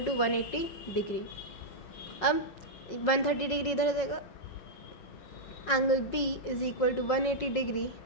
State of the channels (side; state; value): right; late; 5.4 ms